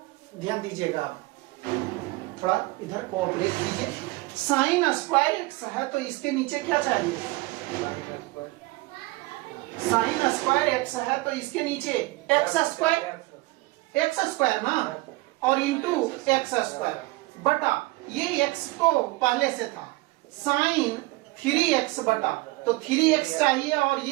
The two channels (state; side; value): quieter; left; 21.9 dB